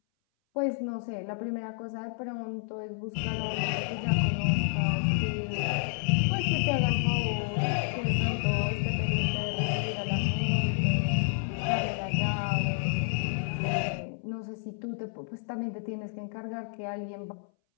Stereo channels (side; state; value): right; silent; 58 dB below the other